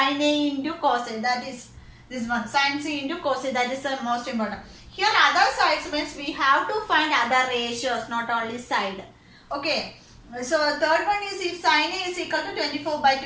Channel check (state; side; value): identical; both; correlation 1.00